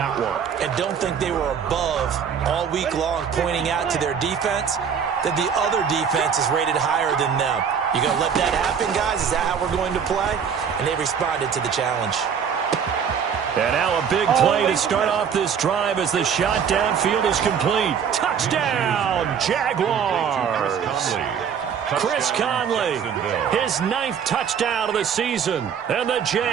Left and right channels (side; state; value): left; quieter; 7.3 dB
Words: one. And don't think they were above all week long pointing out to their defense that the other defense is rated higher than them. You going to let that happen, guys? Is that how we're going to play? And they responded to the challenge. And now a big play to start off this drive as the shot downfield is complete. Touchdown, Jaguars! Chris Conley, his 9th touchdown of the season. And the